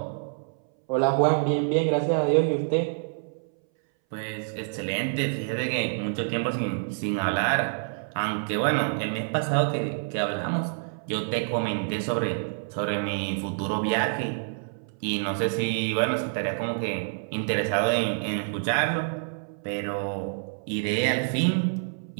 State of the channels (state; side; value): silent; left; 60 dB below the other